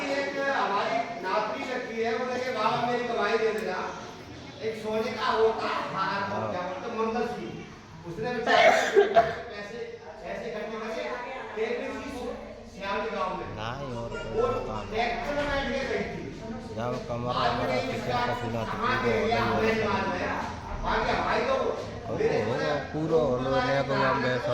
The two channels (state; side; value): identical; both; correlation 1.00